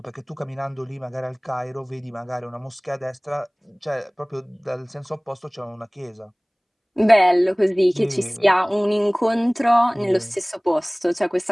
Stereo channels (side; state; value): both; identical; correlation 1.00